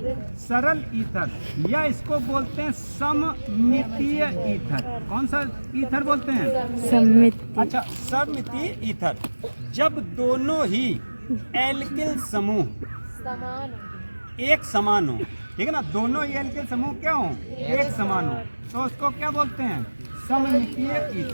सरल ईथर, या इसको बोलते हैं सममितीय ईथर। कौन सा ईथर बोलते हैं? सममितीय। अच्छा, सममितीय ईथर जब दोनों ही एल्किल समूह एक समान हो, ठीक है ना, दोनों ही एल्किल समूह क्या हो? एक समान हो, तो उसको क्या बोलते हैं? सममितीय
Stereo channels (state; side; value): inverted; both; correlation -1.00